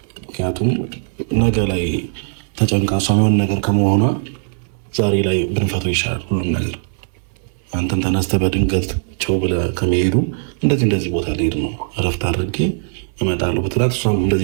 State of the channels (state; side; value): silent; left; 62 dB below the other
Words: ምክንያቱም ነገ ላይ ተጨንቃ እሷ የሆነ ነገር ከመሆኗ ዛሬ ላይ ብንፈተው ይሻላል ሁሉም ነገር። አንተን ተነስተህ በድንገት ቸው ብለህ ከመሄዱ እንደዚህ ቦታ ልሄድ ነው እረፍት አድርጌ እመጣለሁ ብትላት እሷም